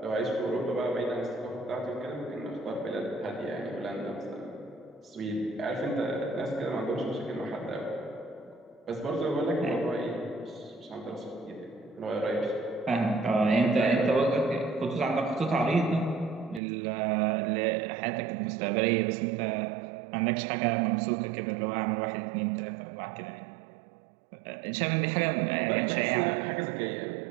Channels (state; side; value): drops out; left; at 16.6 s